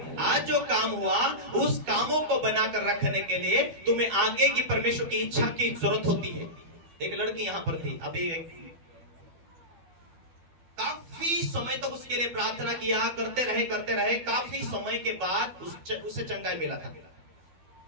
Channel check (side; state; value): left; late; 12 ms